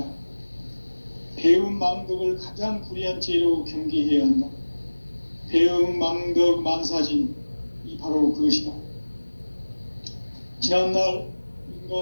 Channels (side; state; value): both; inverted; correlation -1.00